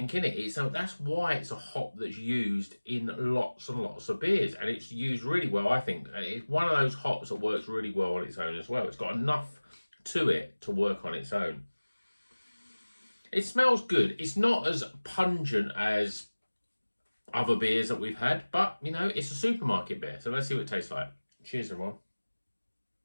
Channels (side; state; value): both; inverted; correlation -1.00